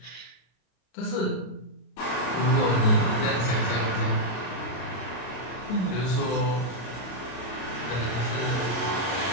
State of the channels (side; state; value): right; late; 33 ms